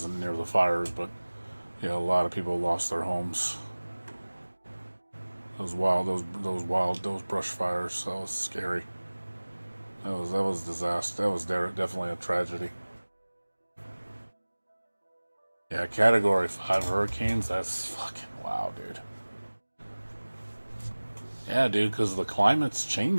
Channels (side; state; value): both; inverted; correlation -1.00